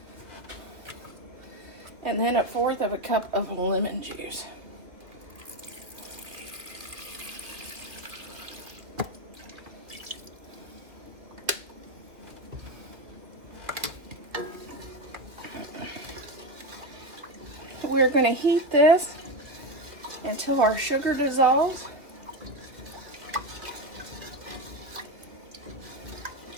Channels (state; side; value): late; left; 2.2 ms